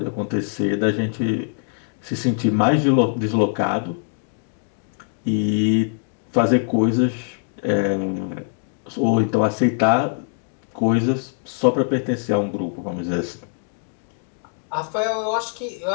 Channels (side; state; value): right; silent; 64 dB below the other